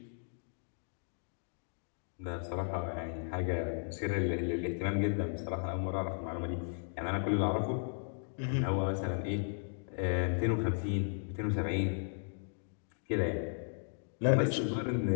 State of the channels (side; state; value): right; silent; digital silence